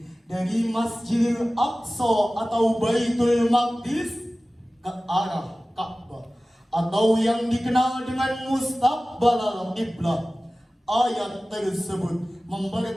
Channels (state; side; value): normal; both; correlation 0.97